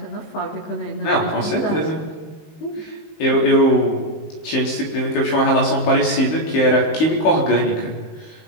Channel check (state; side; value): late; right; 19 ms